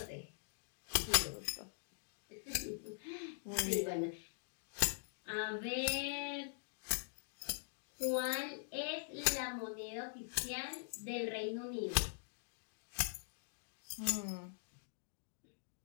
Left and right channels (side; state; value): right; silent; digital silence